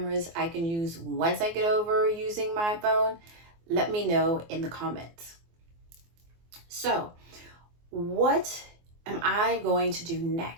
I can use once I get over using my phone, let me know in the comments. So what am I going to do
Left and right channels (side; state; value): left; late; 24 ms